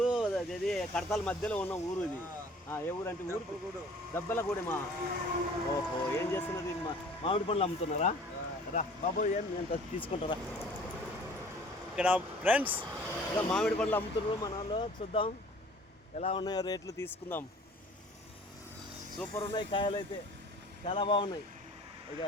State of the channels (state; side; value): normal; both; correlation 0.50